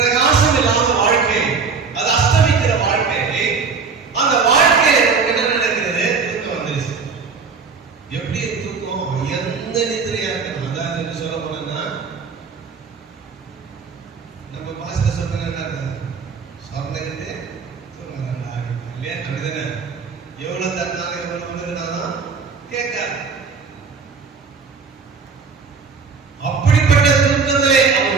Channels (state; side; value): quieter; left; 5.2 dB